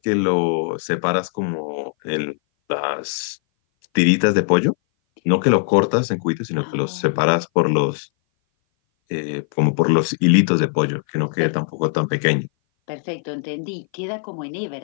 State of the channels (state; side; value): silent; right; 59 dB below the other